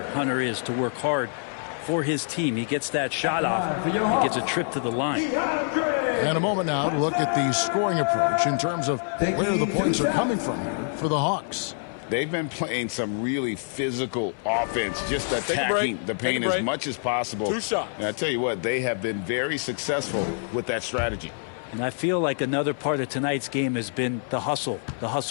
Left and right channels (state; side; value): silent; right; 58 dB below the other